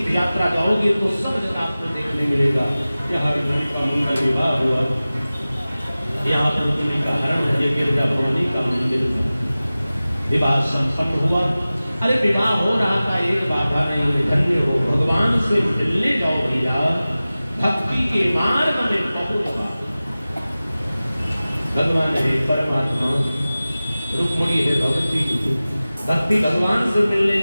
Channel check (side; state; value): both; inverted; correlation -0.97